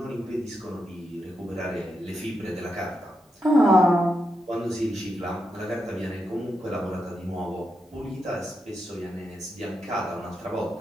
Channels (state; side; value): normal; both; correlation 0.85